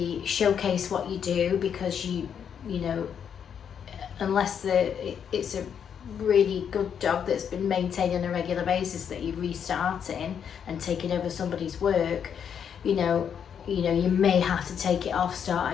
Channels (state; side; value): quieter; right; 7.9 dB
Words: showcase what you do, because you know, unless it's a really good dog that's been maintained on a regular basis that you're restarting and taking over somebody's work, you know, you may have to take it off, start